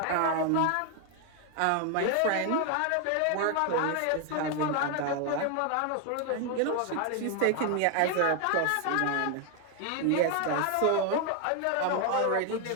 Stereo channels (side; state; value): both; different; correlation 0.01